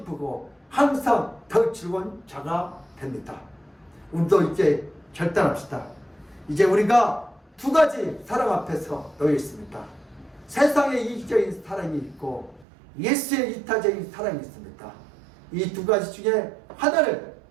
항상 더 즐거운 자가 됩니다. 우리도 이제 결단합시다. 이제 우리가 두 가지 사랑 앞에서 놓여 있습니다. 세상의 이기적인 사랑이 있고 예수의 이타적인 사랑이 있습니다. 이 두 가지 중에 하나를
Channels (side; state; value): left; drops out; at 12.7 s